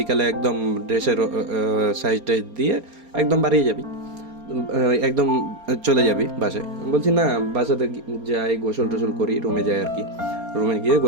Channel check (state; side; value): late; left; 4.3 ms